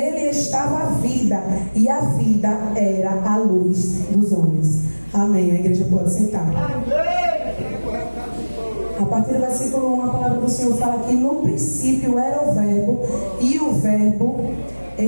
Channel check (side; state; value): both; inverted; correlation -1.00